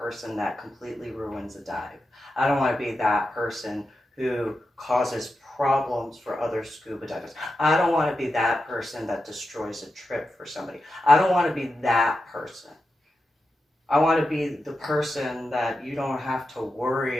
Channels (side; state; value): both; normal; correlation 0.89